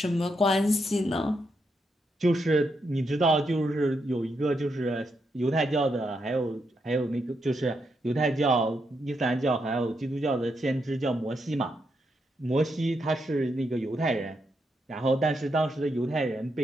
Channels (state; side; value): normal; both; correlation 0.81